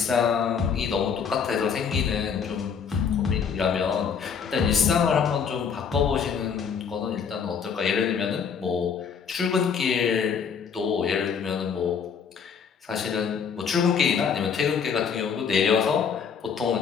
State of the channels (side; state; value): right; quieter; 6.7 dB